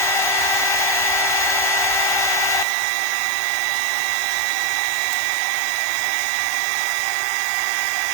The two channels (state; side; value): drops out; left; at 2.7 s